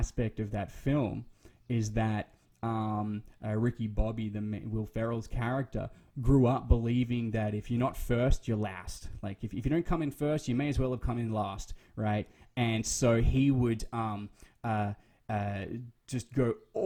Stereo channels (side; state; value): both; identical; correlation 1.00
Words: of that film is that Ricky Bobby, Will Ferrell's character, grew up believing that if you're not first, you're last. Like if you don't come in first, you may as well have come in last, right? And so he would just go